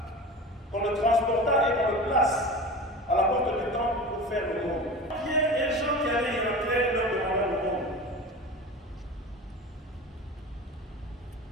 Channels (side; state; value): both; normal; correlation 0.32